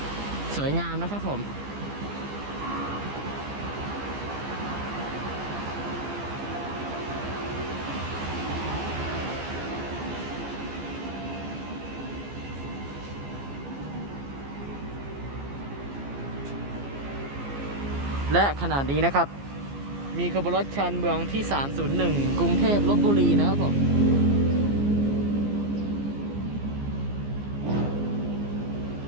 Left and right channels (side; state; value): left; late; 15 ms